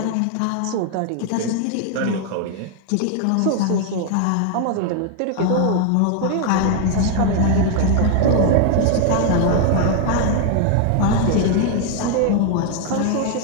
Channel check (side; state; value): both; different; correlation 0.01